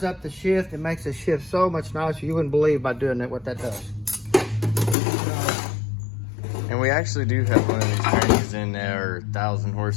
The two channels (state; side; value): drops out; right; at 5.0 s